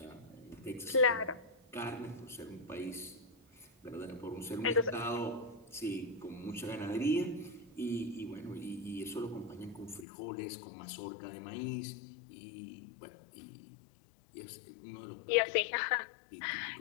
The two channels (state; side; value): drops out; right; at 10.1 s